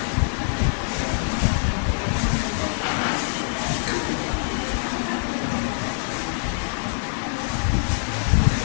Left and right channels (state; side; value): silent; right; 61 dB below the other